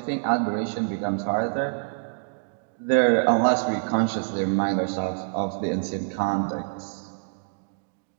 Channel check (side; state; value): left; silent; digital silence